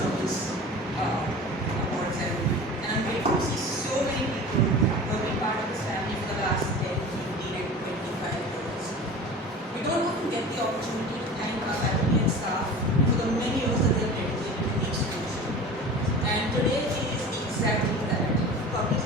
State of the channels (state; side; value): normal; both; correlation 0.37